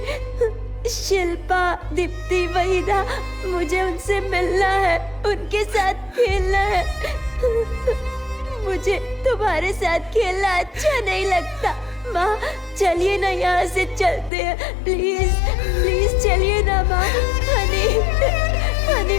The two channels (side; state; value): right; drops out; at 14.3 s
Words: शिल्पा, दीप्ति, वहीदा, मुझे उनसे मिलना है, उनके साथ खेलना है। मुझे तुम्हारे साथ खेलना अच्छा नहीं लगता। माँ चलिए ना, यहाँ से चलते हैं। प्लीज प्लीज चलिए ना माँ। हनी हनी